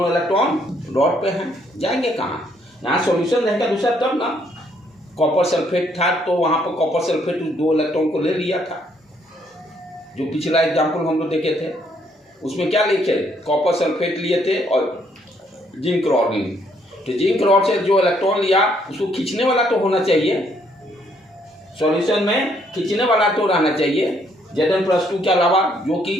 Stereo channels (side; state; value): both; normal; correlation 0.69